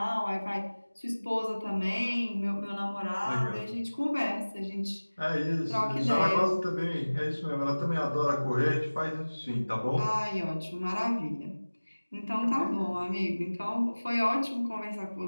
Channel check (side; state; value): both; inverted; correlation -1.00